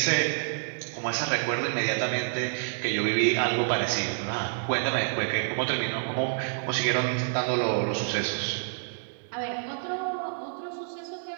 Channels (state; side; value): silent; left; digital silence